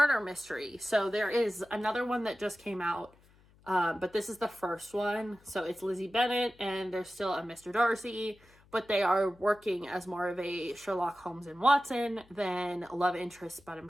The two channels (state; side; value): noise; left; hum, 28 dB below the sound